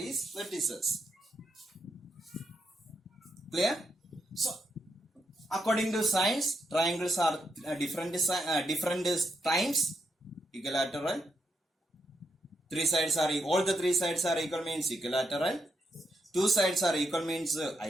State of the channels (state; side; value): normal; both; correlation 0.81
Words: vertices. Clear? So, according to science, triangles are different times. Equilateral. Three sides are equal. All the three sides are equal means equilateral. Two sides are equal means